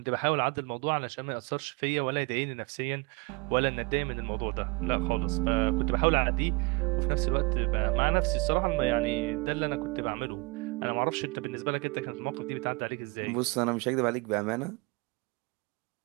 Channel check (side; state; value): left; quieter; 27.3 dB